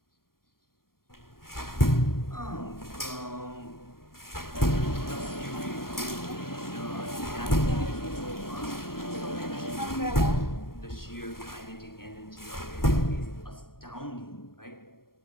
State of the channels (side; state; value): right; late; 0.93 ms